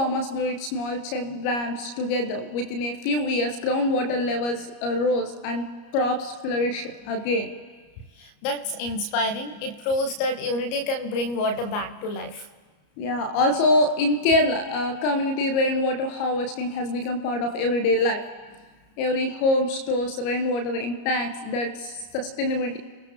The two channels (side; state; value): right; late; 34 ms